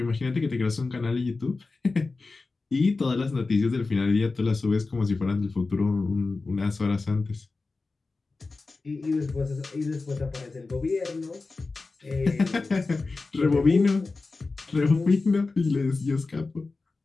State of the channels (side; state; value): right; quieter; 3.8 dB